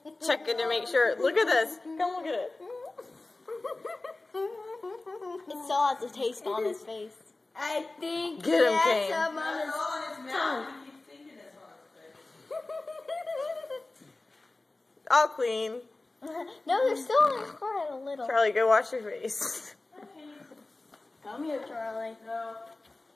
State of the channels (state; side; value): quieter; right; 3.1 dB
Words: checking to make sure. Look at this. Come look at it. It still has a taste on his face. I think Get him, Kane. some on his tongue. He keeps thinking it's on his face. All clean. No, there's still on his forehead a little. Charlie, go wash your face. Come here, Charlie. No.